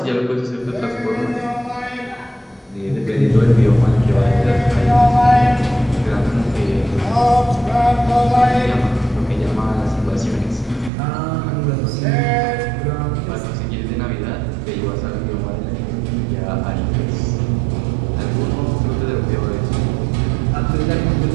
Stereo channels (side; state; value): left; drops out; at 10.9 s